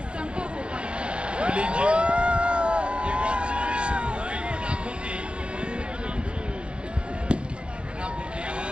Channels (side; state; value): left; late; 0.057 ms